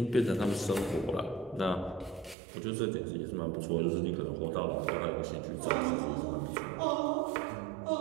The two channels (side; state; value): left; drops out; at 2.4 s